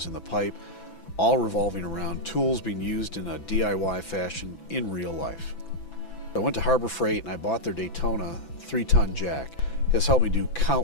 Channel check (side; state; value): right; late; 6.0 ms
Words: in the pipe, all revolving around tools being used in a DIY fashion in real life. I went to Harbor Freight and I bought their Daytona 3-ton jack. It has helped me do